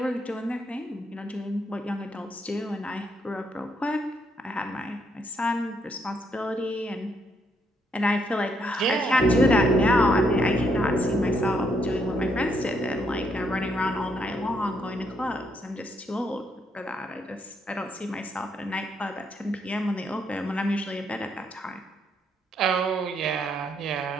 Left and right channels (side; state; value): both; normal; correlation 0.74